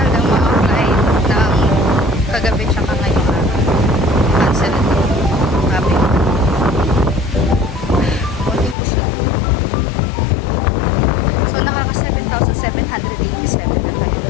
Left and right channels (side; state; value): right; drops out; at 8.8 s